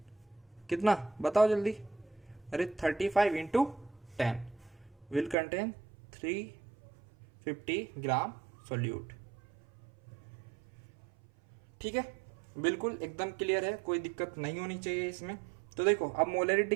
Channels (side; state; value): left; drops out; at 5.4 s